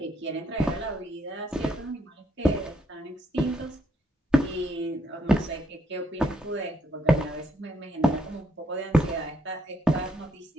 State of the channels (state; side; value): normal; both; correlation 0.74